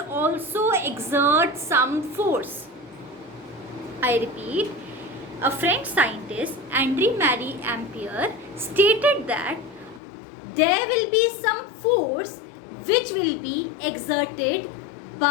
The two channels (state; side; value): drops out; right; at 10.0 s